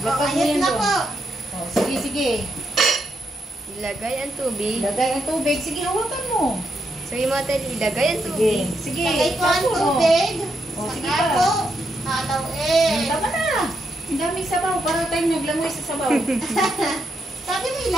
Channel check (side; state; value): both; normal; correlation 0.81